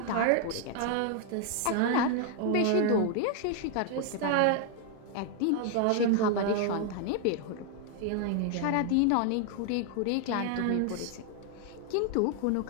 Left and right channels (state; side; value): different; both; correlation 0.00